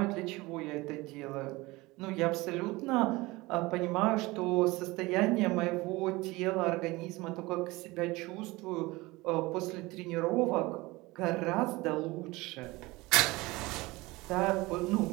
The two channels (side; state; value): left; quieter; 21.5 dB